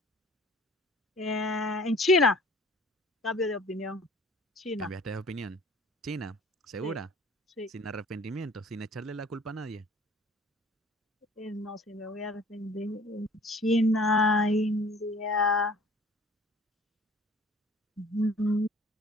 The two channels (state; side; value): normal; both; correlation 0.50